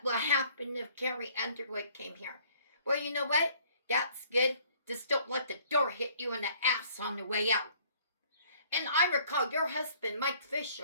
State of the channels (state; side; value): inverted; both; correlation -0.58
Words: will happen if Carrie Underwood came here. Well, you know what? That's good. Just don't let the door hit you in the ass on the way out. And I recall your husband, Mike